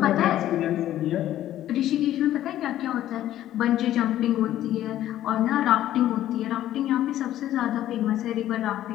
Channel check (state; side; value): quieter; right; 12.8 dB